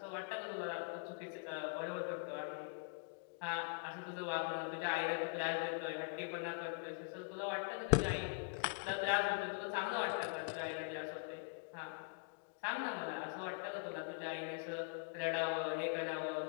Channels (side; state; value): right; quieter; 39.3 dB